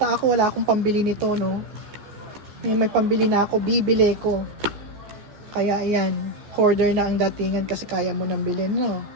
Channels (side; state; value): left; late; 14 ms